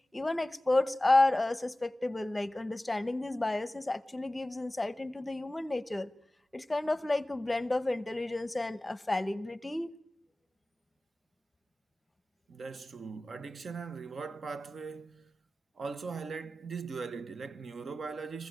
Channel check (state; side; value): normal; both; correlation 0.97